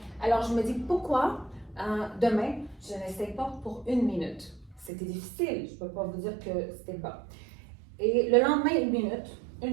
Alors, je me dis, pourquoi demain, je n'essaie pas pour 1 minute? C'était difficile. Je ne peux pas vous dire que c'était bas. Et le lendemain, 1 minute, 1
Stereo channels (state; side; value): drops out; left; at 4.9 s